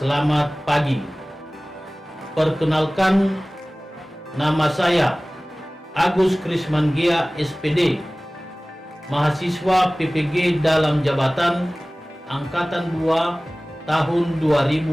pagi. Perkenalkan, nama saya Agus Krismangia SPD, mahasiswa PPG dalam jabatan Angkatan 2 tahun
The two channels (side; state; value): both; normal; correlation 0.98